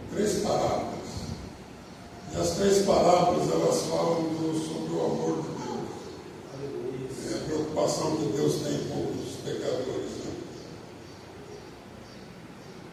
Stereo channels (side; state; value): both; identical; correlation 1.00